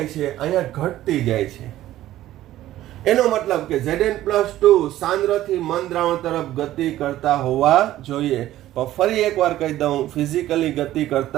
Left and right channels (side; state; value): left; quieter; 14.1 dB